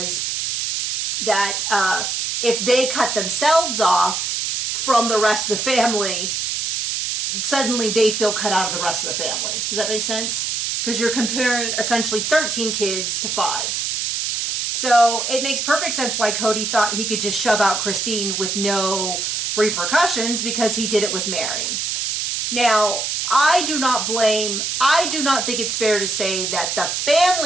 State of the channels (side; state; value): right; noise; hiss, 1 dB below the sound